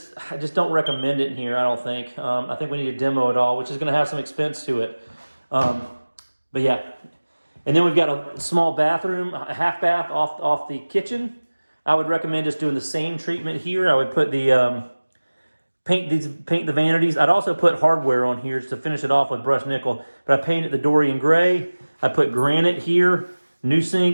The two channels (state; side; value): inverted; both; correlation -1.00